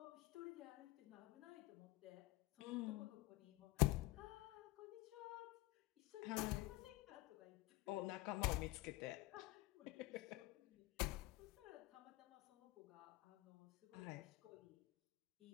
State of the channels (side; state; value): right; quieter; 19.9 dB